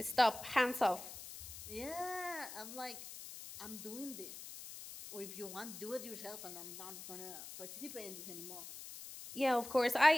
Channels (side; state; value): left; noise; hiss, 11 dB below the sound